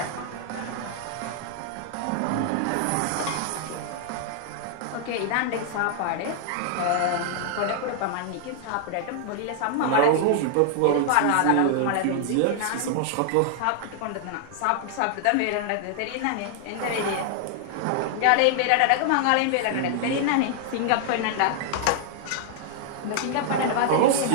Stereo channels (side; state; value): both; different; correlation -0.01